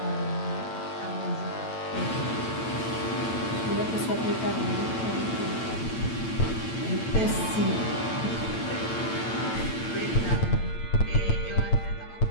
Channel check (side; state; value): right; late; 8.9 ms